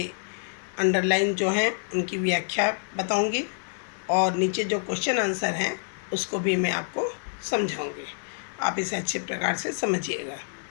अंडरलाइन जो हैं उनकी व्याख्या बताऊंगी और नीचे जो क्वेश्चन आंसर हैं उसको भी मैं आपको समझाऊंगी। आप इसे अच्छे प्रकार से समझिएगा।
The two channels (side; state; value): right; silent; digital silence